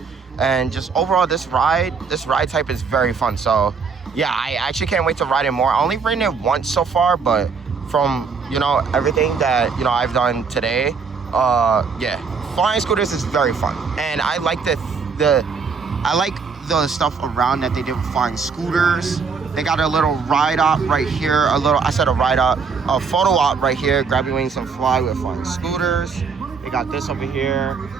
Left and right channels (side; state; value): left; quieter; 5.4 dB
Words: And just overall, this ride type is very fun. So yeah, I actually can't wait to ride it more. I only ridden it once so far, but from, everything that, I've done today, yeah, Flying Scooters is very fun. And I like I like the stuff around that they did with Flying Scooters. They got a little ride op right here, a photo op right here, grab your wings and fly with Flying Scooters. They got this over here.